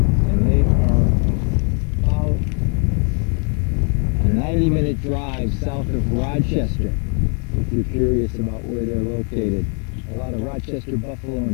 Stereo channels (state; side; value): quieter; right; 37.6 dB